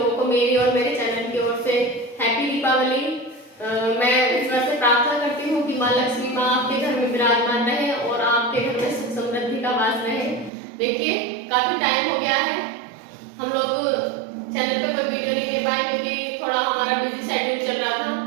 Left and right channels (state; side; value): drops out; left; at 10.5 s